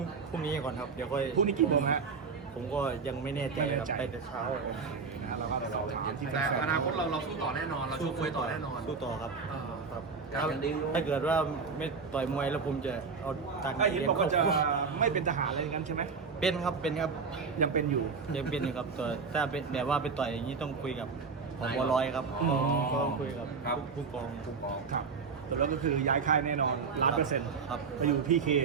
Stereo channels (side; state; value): left; quieter; 5.2 dB